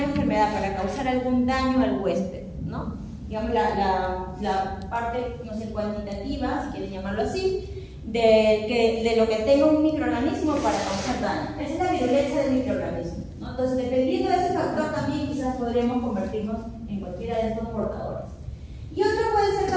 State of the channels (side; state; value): both; identical; correlation 1.00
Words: enfermedad, para causar algún daño al huésped, ¿no? Digamos, la parte, no sé, cuantitativa, si quieren llamarlo así, de lo que tenga un microorganismo para causar daño. Esa es la virulencia del microorganismo, ¿no? Entonces, dependiendo de ese factor, también quizás podríamos convertirnos en cualquiera de estos portadores. Y otro puede ser